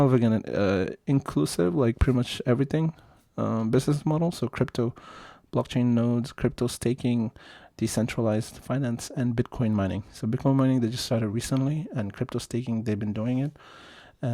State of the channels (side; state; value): both; identical; correlation 1.00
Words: of again inclusive, like pretty much everything business model. So crypto, blockchain nodes, crypto staking, decentralized finance, and Bitcoin mining. So Bitcoin mining, they just started recently, and crypto staking, they've been doing it.